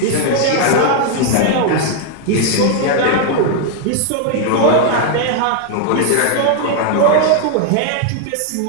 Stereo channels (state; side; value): different; both; correlation 0.00